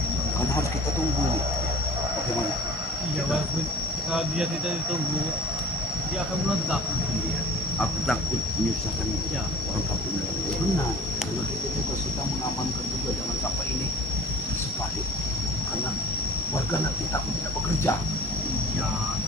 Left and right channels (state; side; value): normal; both; correlation 0.44